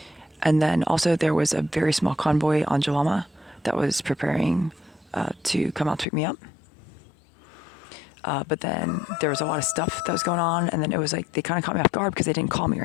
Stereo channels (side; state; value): right; drops out; at 6.1 s